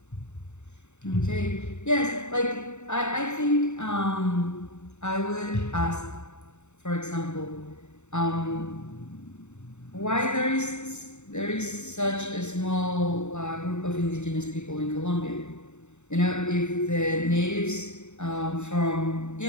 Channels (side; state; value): right; late; 0.83 ms